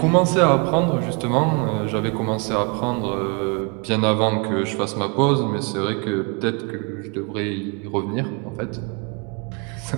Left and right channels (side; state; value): left; quieter; 32.9 dB